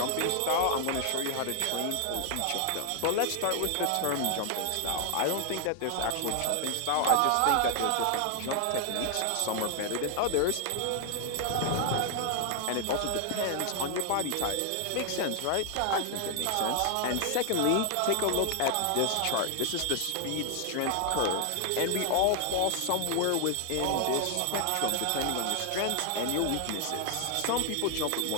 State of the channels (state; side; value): different; both; correlation 0.00